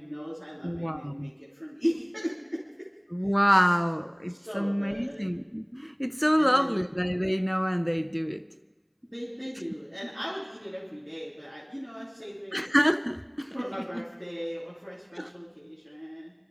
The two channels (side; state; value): both; identical; correlation 1.00